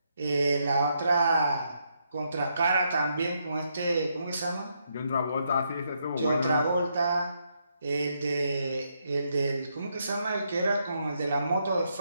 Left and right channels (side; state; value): both; inverted; correlation -0.78